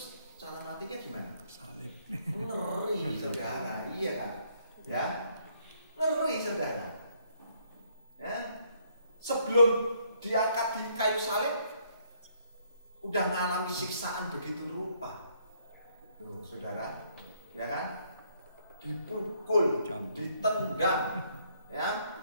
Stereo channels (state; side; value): inverted; both; correlation -0.68